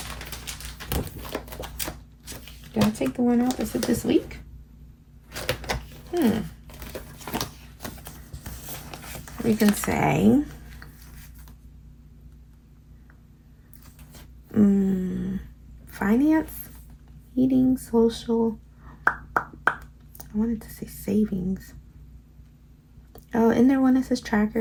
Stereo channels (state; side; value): identical; both; correlation 1.00